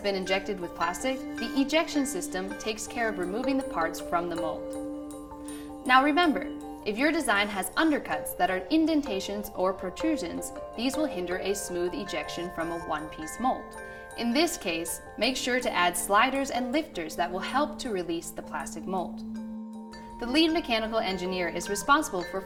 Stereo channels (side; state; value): both; identical; correlation 1.00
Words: been injected with plastic, the ejection system takes care of removing the parts from the mold. Now remember, if your design has undercuts that are indentations or protrusions, these will hinder a smooth ejection from a one-piece mold. In this case, make sure to add sliders and lifters that will help to release the plastic mold. The lead mechanical engineer is responsible for